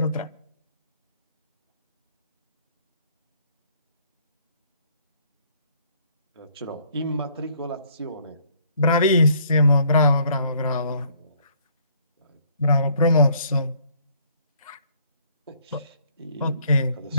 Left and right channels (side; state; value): both; inverted; correlation -0.63